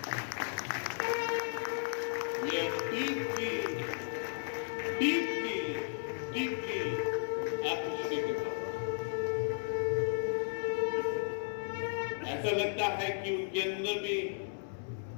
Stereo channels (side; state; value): right; silent; 55 dB below the other